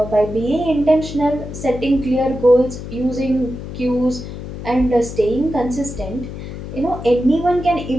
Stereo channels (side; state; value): left; noise; hum, 9 dB below the sound